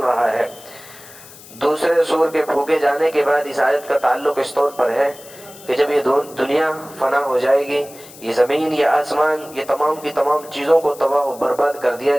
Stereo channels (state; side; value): noise; left; hiss, 19 dB below the sound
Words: ہے۔ دوسرے سور کے پھونکے جانے کے بعد اس آیت کا تعلق اس طور پر ہے کہ جب یہ دنیا فنا ہو جائے گی، یہ زمین، یہ آسمان، یہ تمام کی تمام چیزوں کو تباہ و برباد کر دیا